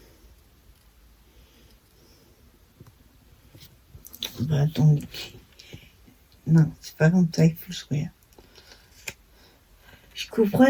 Bah, attendez. Non, c'est pas comme ça, il faut se regarder. Je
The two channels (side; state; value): both; identical; correlation 1.00